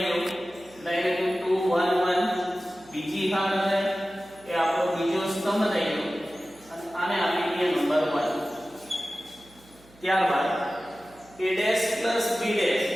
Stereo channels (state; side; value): noise; right; hum, 26 dB below the sound